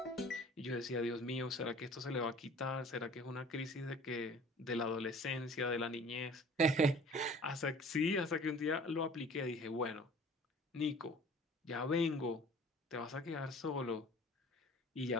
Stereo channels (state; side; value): normal; both; correlation 0.47